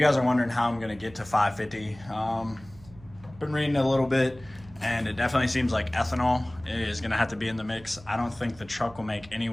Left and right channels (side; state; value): right; noise; hum, 22 dB below the sound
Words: guys are wondering how I'm gonna get to 550, been reading a little bit, and it definitely seems like ethanol is gonna have to be in the mix. I don't think the truck will make